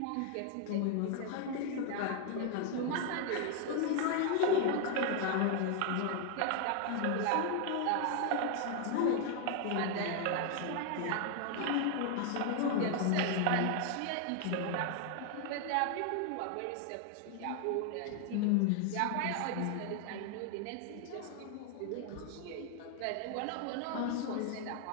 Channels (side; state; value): both; different; correlation 0.00